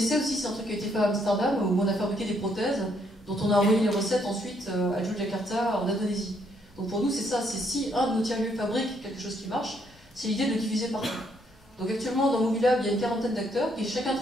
aussi, c'est un truc qui a été fait à Amsterdam, où on a fabriqué des prothèses, dont on a envoyé les recettes ensuite à Yogyakarta, en Indonésie. Donc pour nous, c'est ça, c'est si un de nos tiers-lieux fabrique quelque chose qui marche, c'est l'idée de le diffuser partout. Donc actuellement, dans Mobilab, il y a une quarantaine d'acteurs qui chacun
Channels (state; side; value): normal; both; correlation 0.71